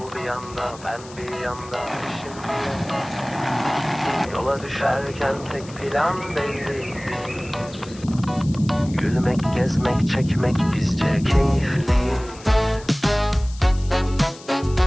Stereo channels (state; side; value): noise; left; hiss, 19 dB below the sound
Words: bir yanda, ben bir yanda şimdi. Yola düşerken tek plan belli. Gülmek, gezmek, çekmek bizce keyifli.